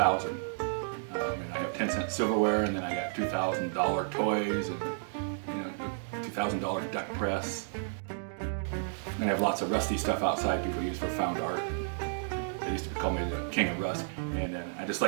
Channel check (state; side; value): silent; left; digital silence